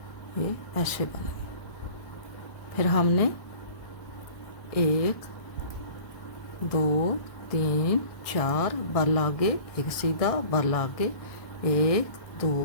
ये ऐसे बने। फिर हमने एक, दो, तीन, चार, बल आगे, एक सीधा, बल आगे, एक,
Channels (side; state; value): right; late; 1.6 ms